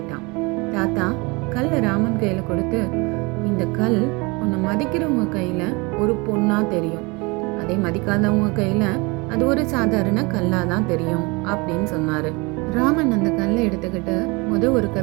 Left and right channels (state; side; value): quieter; left; 27.0 dB